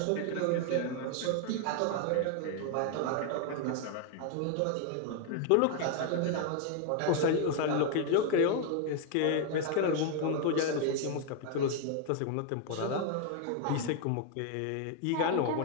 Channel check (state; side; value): different; both; correlation 0.00